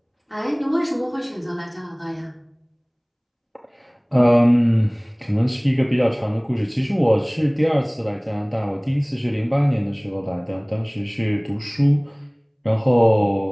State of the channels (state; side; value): identical; both; correlation 1.00